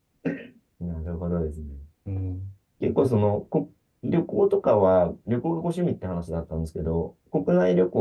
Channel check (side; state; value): both; identical; correlation 1.00